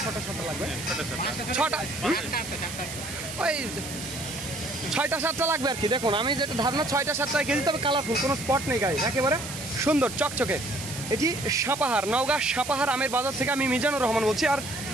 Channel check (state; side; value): noise; right; hiss, 10 dB below the sound